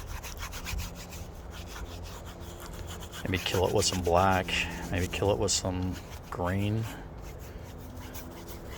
Maybe kill it with some black. Maybe kill it with some green.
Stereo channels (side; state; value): both; identical; correlation 1.00